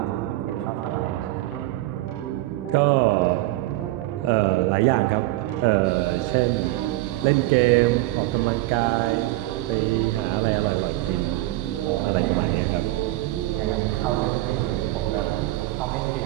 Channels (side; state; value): left; quieter; 17.6 dB